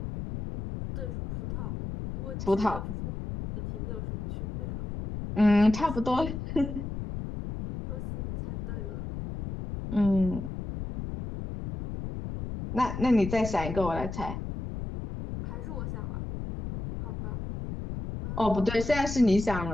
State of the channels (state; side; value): noise; left; rumble, 7 dB below the sound